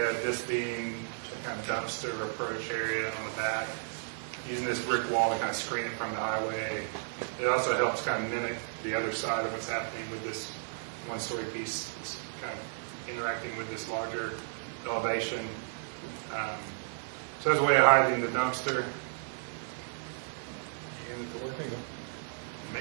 this being a kind of dumpster approach area on the back. Using this brick wall to kind of screen it from the highway. It also helps kind of mimic the other side of what's happening with this one-story piece. It's kind of interacting with this larger elevation. So there's a way of hiding the dumpster. And the door.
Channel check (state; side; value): silent; left; 56 dB below the other